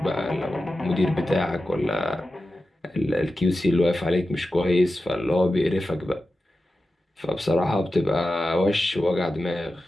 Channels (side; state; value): both; normal; correlation 0.93